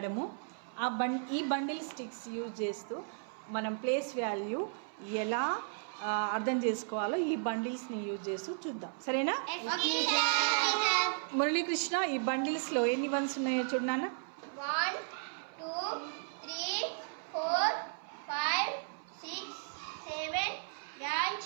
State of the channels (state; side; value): silent; left; 55 dB below the other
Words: ఈ బండిల్ స్టిక్స్ యూజ్ చేస్తూ మనం ప్లేస్ వాల్యూ ఎలా అర్థం చేసుకోవాలో ఈ బండిల్స్ని యూజ్ చేస్తూ చూద్దాం. సరేనా? మురళీకృష్ణ, ఈ బండిల్స్లో ఎన్ని వన్స్ ఉన్నాయో చూడు నాన్న. 1 2 3 4 5 6 7 8